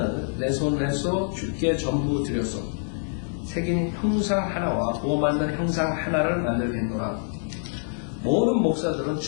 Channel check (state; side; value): silent; right; digital silence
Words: 내 손에서 주께 전부 드렸소. 새긴 형상 하나와 부어 만든 형상 하나를 만들겠노라. 모든 목사들은